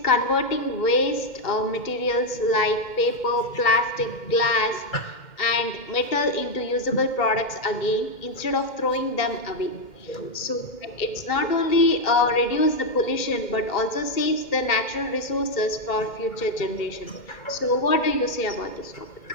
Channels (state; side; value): late; right; 2.1 ms